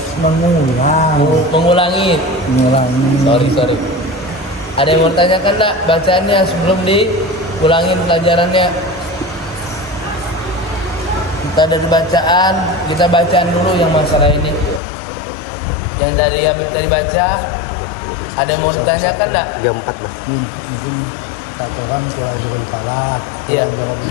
mengulang. mengulangi. Mengulangi. Sorry. Ada yang mau tanyakan enggak bacaannya sebelum diulangin pelajarannya? Kita dari bacaan, kita bacaan dulu yang masalah ini. Yang dari Habib tadi baca, ada yang mau ditanyakan enggak? 34 Bang. Mungkin Tuhan Tuhan Falaq, Iya.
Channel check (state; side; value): drops out; right; at 14.8 s